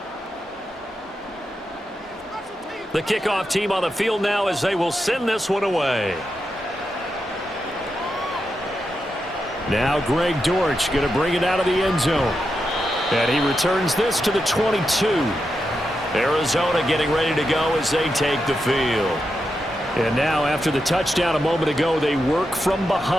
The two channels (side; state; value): both; normal; correlation 0.87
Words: The kickoff team on the field now as they will send this one away. Now Greg Dortch going to bring it out of the end zone. And he returns this to the 22. Arizona getting ready to go as they take the field. And now after the touchdown a moment ago, they work from